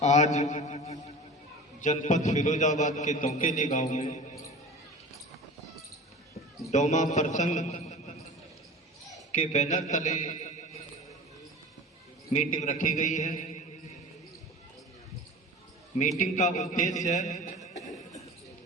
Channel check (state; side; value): normal; both; correlation 0.36